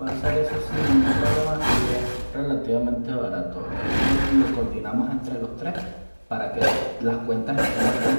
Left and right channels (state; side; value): inverted; both; correlation -1.00